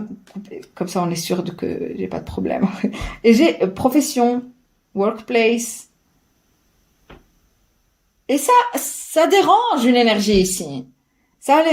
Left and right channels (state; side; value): identical; both; correlation 1.00